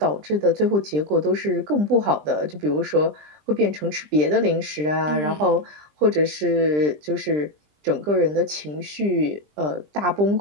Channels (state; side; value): late; left; 20 ms